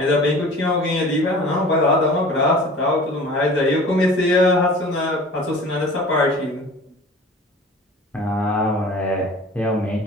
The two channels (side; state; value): both; normal; correlation 0.43